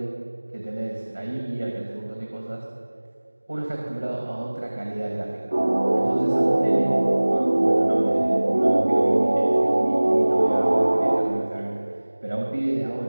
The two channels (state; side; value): inverted; both; correlation -1.00